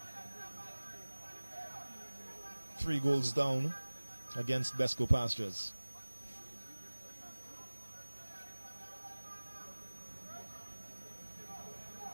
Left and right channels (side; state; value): both; inverted; correlation -1.00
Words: 3 goals down against BESCO Pastures.